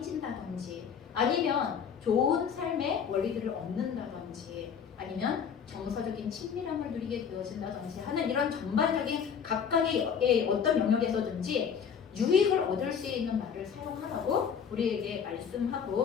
아니면 좋은 삶의 원리들을 얻는다든지, 아니면 정서적인 친밀함을 누리게 되어진다든지 하는 이런 전반적인 각각의 어떤 영역에서든지 유익을 얻을 수 있는 말을 사용하라고 우리에게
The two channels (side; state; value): right; quieter; 7.2 dB